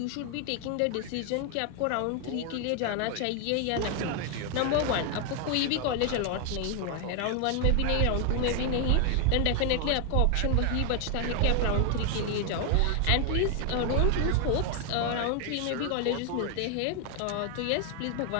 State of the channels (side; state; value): both; different; correlation 0.00